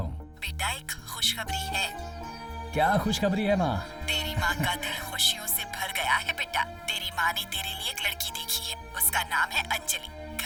बेटा, एक खुशखबरी है। क्या खुशखबरी है माँ? तेरी माँ का दिल खुशियों से भर गया है बेटा। तेरी माँ ने तेरे लिए एक लड़की देखी है, उसका नाम है अंजलि।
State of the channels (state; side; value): identical; both; correlation 1.00